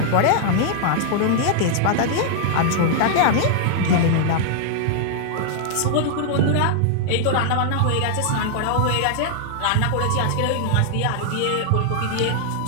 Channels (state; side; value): different; both; correlation -0.01